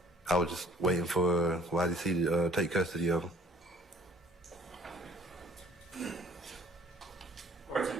I was just waiting for YDC to take custody of him. Court's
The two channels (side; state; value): both; normal; correlation 0.55